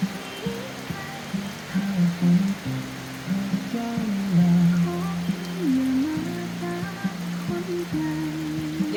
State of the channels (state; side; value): identical; both; correlation 1.00